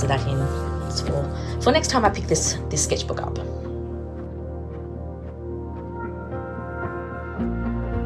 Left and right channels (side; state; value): both; identical; correlation 1.00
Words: of that in for next time I pick this sketchbook up.